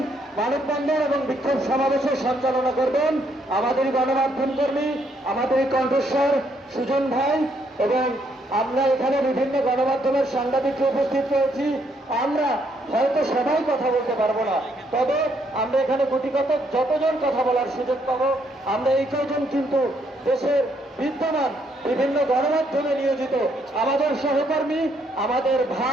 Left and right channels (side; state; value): both; normal; correlation 0.72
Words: মানববন্ধন এবং বিক্ষোভ সমাবেশের সঞ্চালনা করবেন আমাদের গণমাধ্যম কর্মী, আমাদের কণ্ঠস্বর সুজন ভাই, এবং আমরা এখানে বিভিন্ন গণমাধ্যমের সাংবাদিকরা উপস্থিত রয়েছি। আমরা হয়তো সবাই কথা বলতে পারবো না, তবে আমরা এখানে গুটিকত যতজন কথা বলার সুযোগ পাবো আমরা এই কয়জন কিন্তু দেশের বিদ্যমান বিভিন্ন গণমাধ্যমে নিয়োজিত আমাদের সহকর্মী, আমাদের